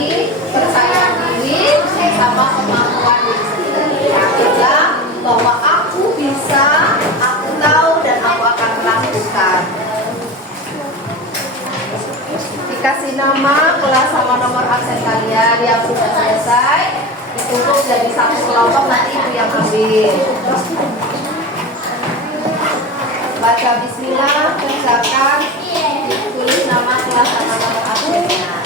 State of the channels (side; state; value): both; normal; correlation 0.27